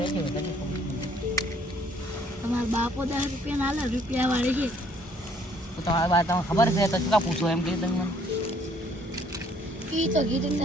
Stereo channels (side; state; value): both; normal; correlation 0.63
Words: તમારા બાપો 10 રૂપિયા ના લે રૂપિયા વાળી છે તો તમારી વાત તમને ખબર છે તો શું કા પૂછો એમ કીધું તમે મને ઈ તો કીધું